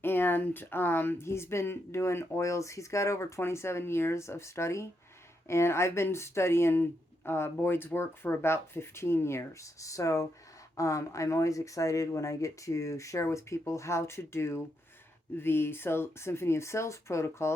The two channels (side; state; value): both; normal; correlation 0.81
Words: and he's been doing oils. He's got over 27 years of study, and I've been studying Boyd's work for about 15 years. So I'm always excited when I get to share with people how to do the Symphony of Cells